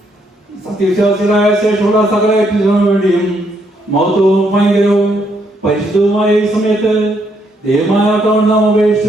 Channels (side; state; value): both; normal; correlation 0.74